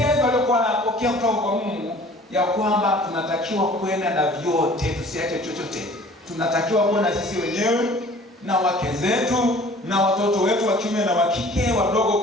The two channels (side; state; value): both; normal; correlation 0.49